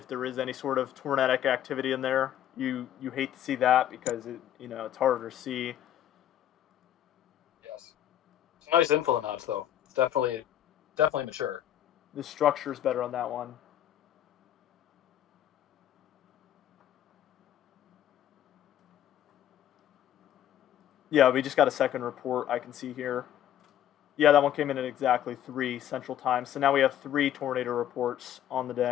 there is any sort of tornadic activity in there. You hate to see that because it's harder to see. Yes. It's nice info notch though. It's definitely mature. The structure is better on that one. Yeah, we just got a second report I can see here. Yeah, that one came in at exactly 3 Central Time. So now we have 3 tornado reports on the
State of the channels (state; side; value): quieter; right; 11.2 dB